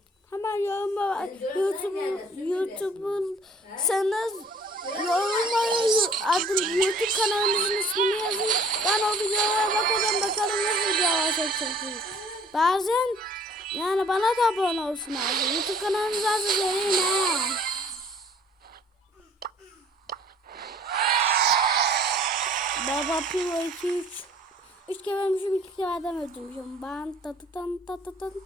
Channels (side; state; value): both; normal; correlation 0.54